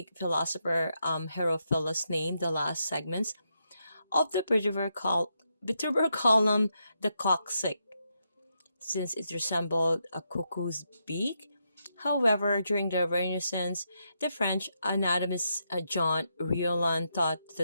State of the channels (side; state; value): both; inverted; correlation -0.82